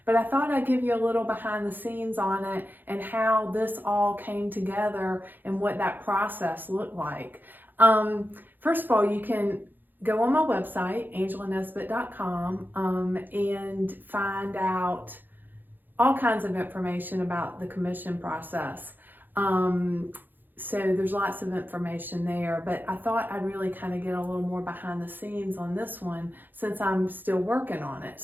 but I thought I'd give you a little behind the scenes on it and how this all came together and what that process looked like. First of all, you can go on my website, angelanesbitt.com, and find out all kinds of information about the commission process. So there's lots of information there, but I thought I'd really kind of get a little more behind the scenes on this one since I'm still working on it.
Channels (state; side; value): late; left; 0.090 ms